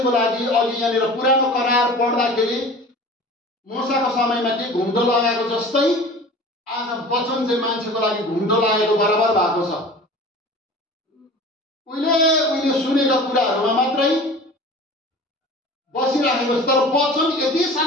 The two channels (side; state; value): both; normal; correlation 0.40